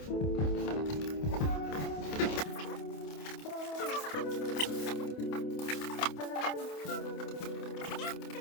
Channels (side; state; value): right; late; 28 ms